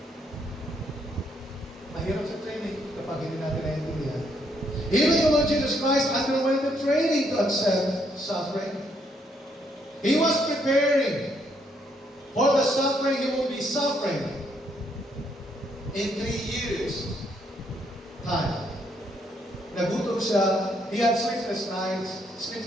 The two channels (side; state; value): both; normal; correlation 0.72